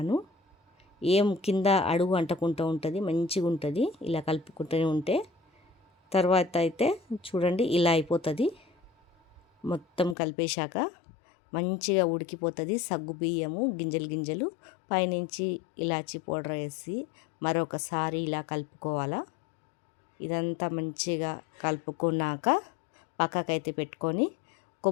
ఏం కింద అడుగు అంటకుంటూ ఉంటుంది. మంచిగా ఉంటుంది ఇలా కలుపుకుంటూనే ఉంటే. తర్వాత అయితే చూడండి ఇలా అయిపోతుంది. మొత్తం కలిపేశాక మంచిగా ఉడికిపోతుంది. సగ్గుబియ్యము గింజలు గింజలు పైనుంచి ఇలాచి పౌడర్ వేసి మరొకసారి ఇలా కలుపుకోవాలా. ఇదంతా మంచిగా కలుపుకున్నాక పక్కకైతే పెట్టుకొని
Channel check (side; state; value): right; drops out; at 10.2 s